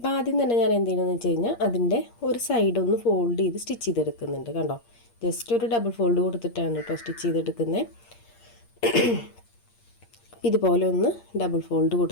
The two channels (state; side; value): late; right; 8.5 ms